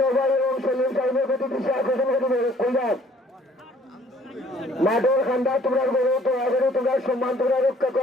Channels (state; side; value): normal; both; correlation 0.58